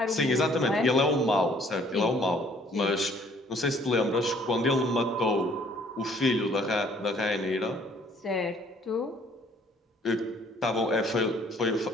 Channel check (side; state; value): both; normal; correlation 0.60